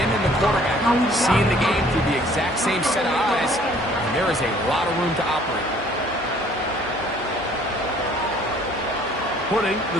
and the quarterback seeing the game through the exact same set of eyes, and there is a lot of room to operate. putting the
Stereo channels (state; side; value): noise; right; hum, 24 dB below the sound